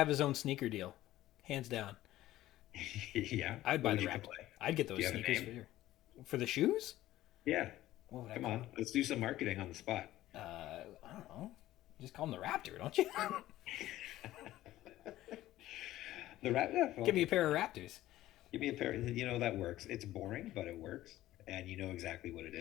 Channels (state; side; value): quieter; right; 15.0 dB